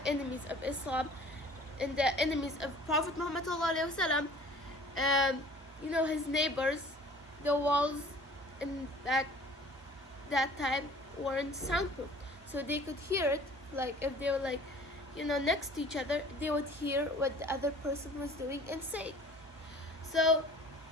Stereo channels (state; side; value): normal; both; correlation 0.48